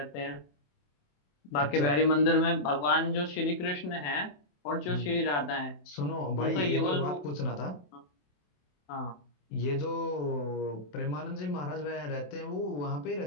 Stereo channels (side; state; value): right; late; 27 ms